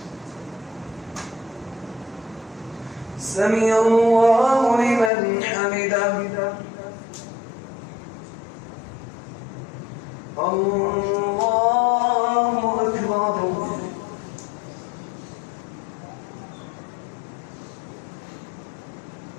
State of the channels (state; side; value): drops out; right; at 5.1 s